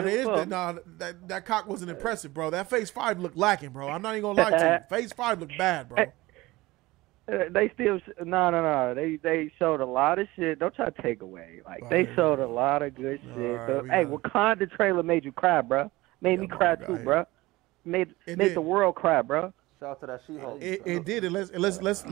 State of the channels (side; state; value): left; quieter; 19.7 dB